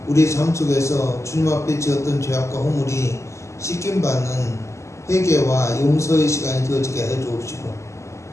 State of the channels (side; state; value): right; late; 0.14 ms